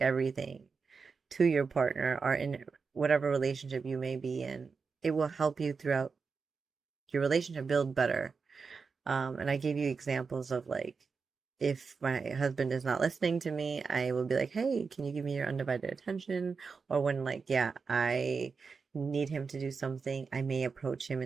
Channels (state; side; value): quieter; left; 5.1 dB